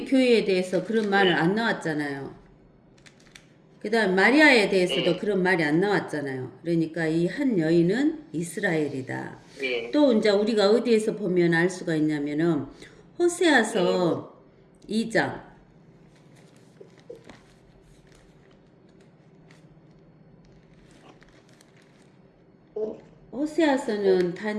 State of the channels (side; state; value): both; identical; correlation 1.00